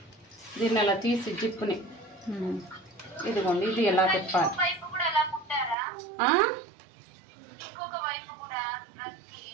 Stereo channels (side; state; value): left; drops out; at 5.8 s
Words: దీన్ని ఇలా తీసి జిప్పుని ఇదిగోండి, ఇది ఎలా తిప్పాలి.